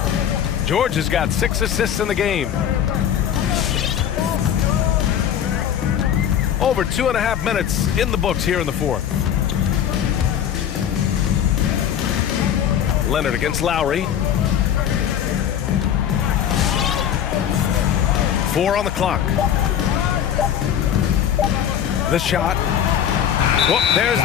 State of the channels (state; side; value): quieter; right; 9.5 dB